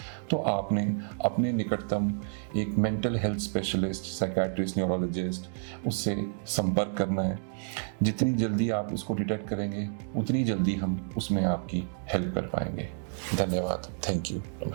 तो आपने अपने निकटतम एक mental health specialist, psychiatrist, neurologist, उससे संपर्क करना है। जितनी जल्दी आप इसको डिटेक्ट करेंगे उतनी जल्दी हम उसमें आपकी हेल्प कर पाएंगे। धन्यवाद। Thank you.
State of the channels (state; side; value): silent; left; digital silence